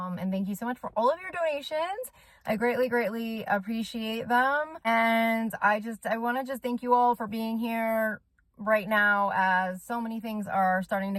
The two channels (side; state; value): both; identical; correlation 1.00